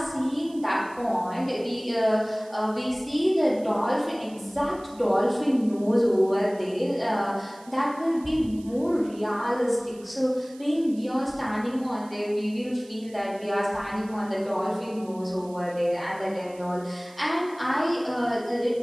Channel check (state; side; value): noise; right; hiss, 24 dB below the sound